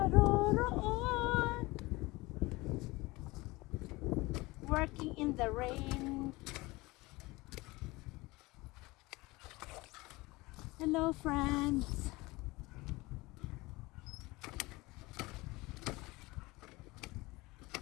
Working in the rain. Hello friends.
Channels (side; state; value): right; quieter; 22.0 dB